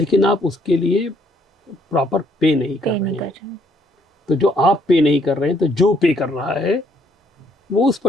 आप उसके लिए प्रॉपर पे नहीं कर रहे हैं। तो जो आप पे नहीं कर रहे हैं, तो जो पे कर रहा है वो उस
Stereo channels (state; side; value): normal; both; correlation 0.68